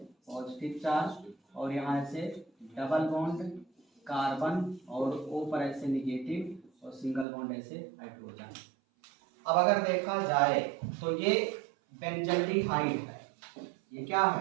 पॉजिटिव चार्ज, और यहाँ ऐसे डबल बॉन्ड कार्बन, और ओ पर ऐसे नेगेटिव, और सिंगल बॉन्ड ऐसे हाइड्रोजन। अब अगर देखा जाए तो ये बेंजल्डिहाइड है। ये क्या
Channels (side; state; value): left; drops out; at 7.2 s